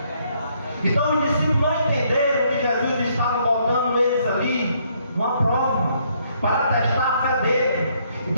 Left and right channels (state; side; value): inverted; both; correlation -0.70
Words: Então os discípulos não entenderam que Jesus estava botando eles ali numa prova, para testar a fé dele.